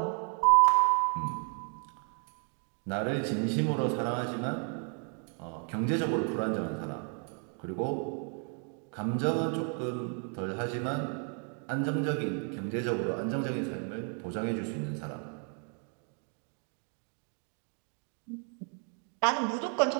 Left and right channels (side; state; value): left; quieter; 38.3 dB